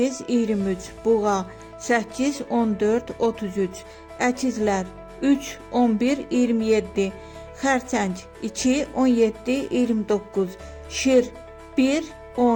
23, buğa 8, 14, 33, əkizlər 3, 11, 27, xərçəng 2, 17, 29, şir 1,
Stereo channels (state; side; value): identical; both; correlation 1.00